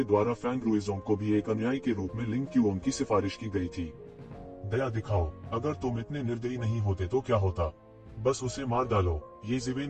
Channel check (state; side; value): identical; both; correlation 1.00